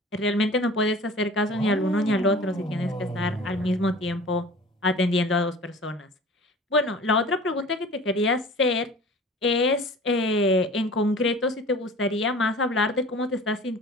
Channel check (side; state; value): both; normal; correlation 0.42